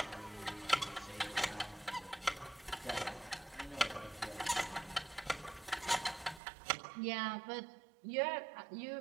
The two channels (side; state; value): left; drops out; at 6.4 s